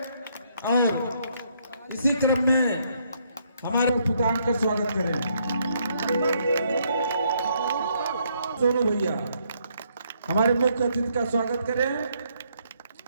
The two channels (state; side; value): inverted; both; correlation -0.72